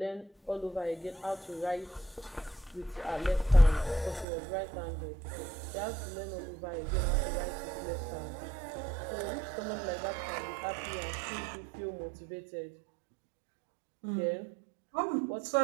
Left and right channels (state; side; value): drops out; left; at 4.2 s